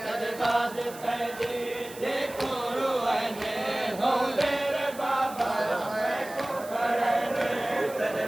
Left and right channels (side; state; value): right; noise; hiss, 17 dB below the sound